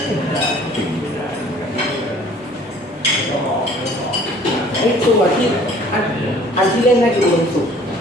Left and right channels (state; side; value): normal; both; correlation 0.53